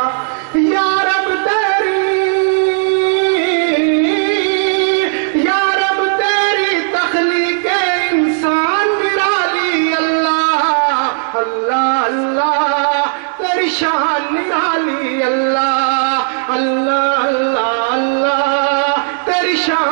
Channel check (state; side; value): silent; left; 63 dB below the other